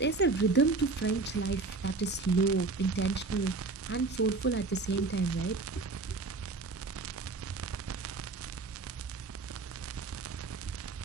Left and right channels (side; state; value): left; quieter; 3.9 dB